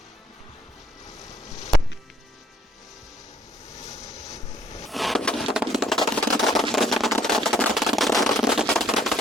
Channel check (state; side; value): normal; both; correlation 0.65